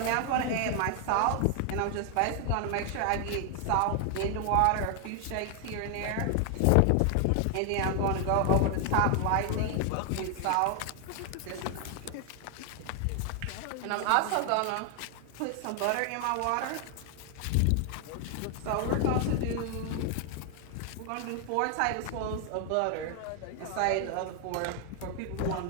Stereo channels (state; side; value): different; both; correlation 0.00